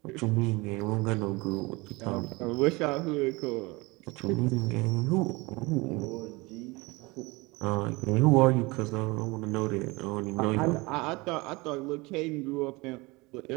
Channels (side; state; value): left; quieter; 24.1 dB